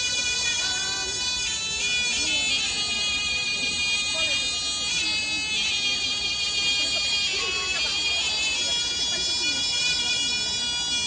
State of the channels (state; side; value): identical; both; correlation 1.00